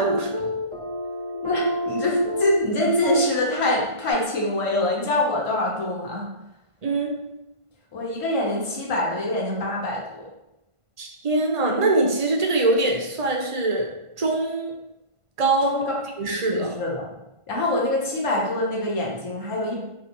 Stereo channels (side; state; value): left; late; 1.5 ms